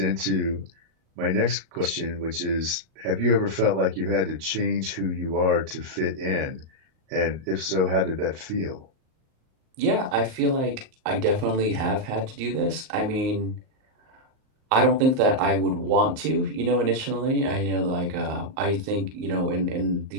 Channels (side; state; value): left; late; 38 ms